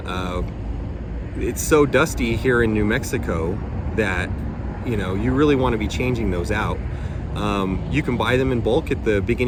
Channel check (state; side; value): identical; both; correlation 1.00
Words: it's so dusty here in New Mexico that you really want to be changing those out. You can buy them in bulk at the